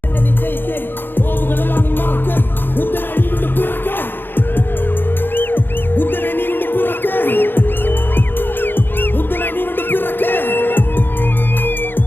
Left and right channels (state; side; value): late; right; 0.098 ms